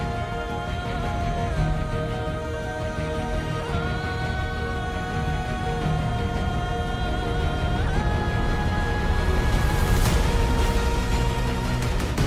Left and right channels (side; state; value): both; identical; correlation 1.00